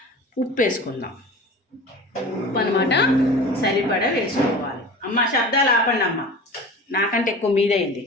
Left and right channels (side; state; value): both; normal; correlation 0.37